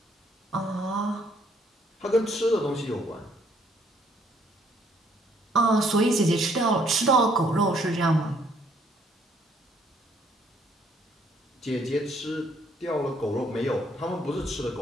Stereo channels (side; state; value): both; normal; correlation 0.66